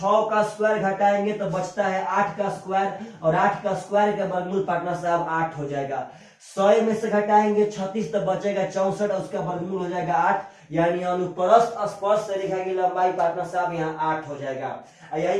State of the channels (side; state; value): both; identical; correlation 1.00